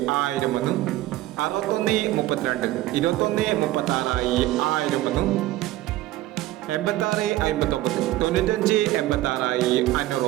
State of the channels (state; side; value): quieter; left; 15.9 dB